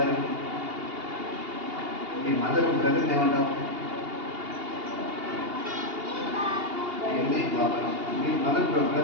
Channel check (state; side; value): late; left; 2.8 ms